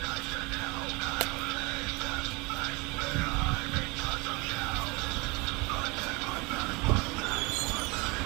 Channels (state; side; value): quieter; left; 25.3 dB